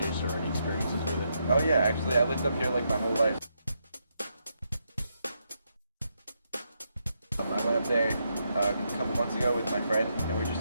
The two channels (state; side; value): inverted; both; correlation -0.80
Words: or any experiences with it. Oh yeah, actually I lived up here like my whole life. I went up there a couple months ago with my friend, and we were